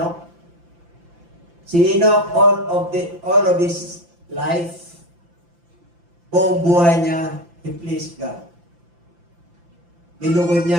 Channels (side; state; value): left; late; 5.8 ms